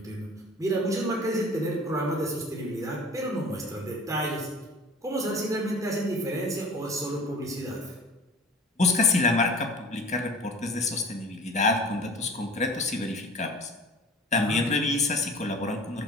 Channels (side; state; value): both; normal; correlation 0.43